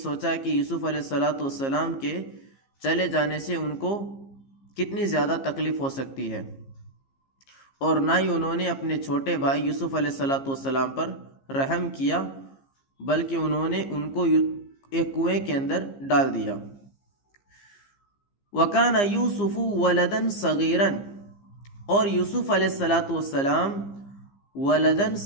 کہ یوسف علیہ السلام کے چلے جانے سے ان کو کتنی زیادہ تکلیف ہو سکتی ہے، اور نہ ہی انہوں نے اپنے چھوٹے بھائی یوسف علیہ السلام پر رحم کیا، بلکہ انہوں نے ان کو ایک کنویں کے اندر ڈال دیا۔ وَكَانَ يُوسُفُ وَلَدًا صَغِيرًا، اور یوسف علیہ السلام ولدن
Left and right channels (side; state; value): right; late; 15 ms